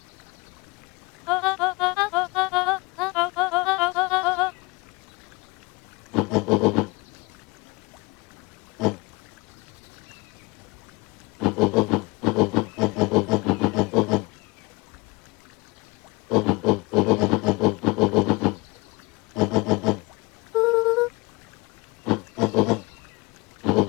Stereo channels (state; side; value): quieter; right; 25.6 dB